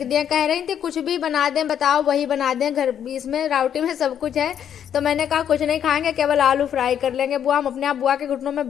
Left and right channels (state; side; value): quieter; right; 9.2 dB